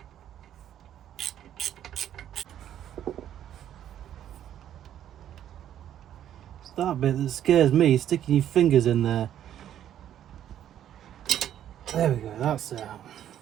It's that bit that scares me, sticking your fingers in there. There we go, that's out.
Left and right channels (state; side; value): quieter; left; 10.8 dB